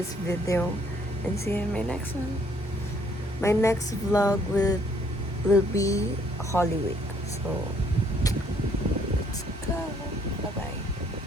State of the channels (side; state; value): both; normal; correlation 0.65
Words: video, and see you in my next one. My next vlog will be Holy Week. So, let's go. Bye-bye.